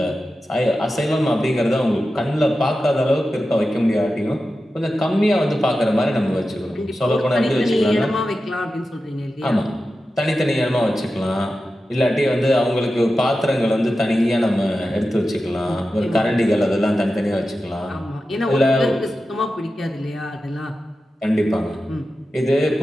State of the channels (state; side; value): normal; both; correlation 0.92